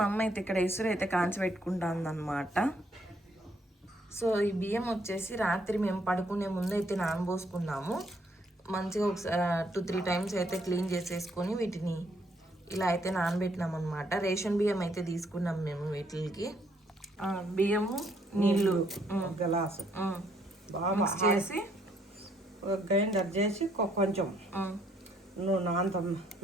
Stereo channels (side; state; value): both; normal; correlation 0.69